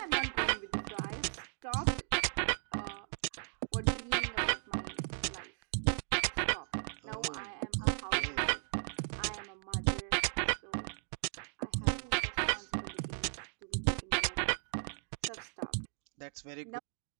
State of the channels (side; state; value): left; silent; 54 dB below the other